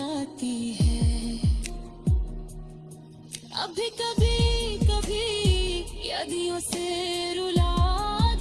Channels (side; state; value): both; identical; correlation 1.00